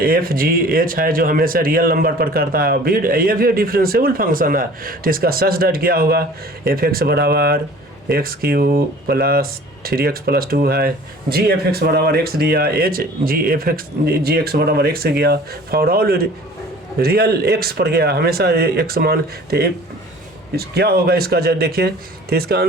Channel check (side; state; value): both; normal; correlation 0.47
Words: जी एच है जो हमेशा रियल नंबर पर करता है। ये भी डिफरेंशिएबल फंक्शन है, तो इसका सच दैट क्या होगा, एफ एक्स बराबर x Q plus 3x plus 2 है। जी एफ एक्स बराबर एक्स दिया, एच जी एक्स बराबर एक्स गया, फॉर ऑल रियल एक्स पर गया, हमेशा एक्स मान। तो क्या होगा इसका जब देखिए, तो इसका